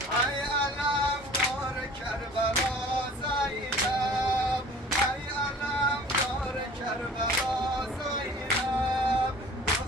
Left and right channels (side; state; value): both; normal; correlation 0.47